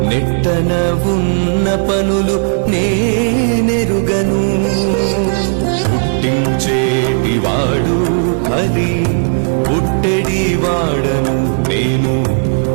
నెట్టన ఉన్న పనులు నేనెరుగను పుట్టించేటివాడు హరి పుట్టెడివాడను నేను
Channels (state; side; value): silent; left; digital silence